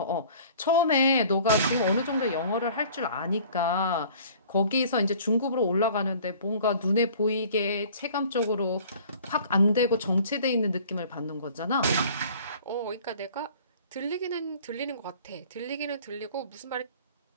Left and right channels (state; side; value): inverted; both; correlation -0.50